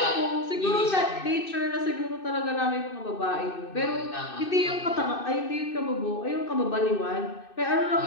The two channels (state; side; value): late; right; 2.6 ms